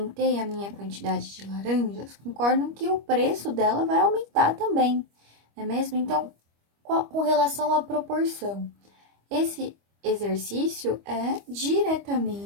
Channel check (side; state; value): left; late; 25 ms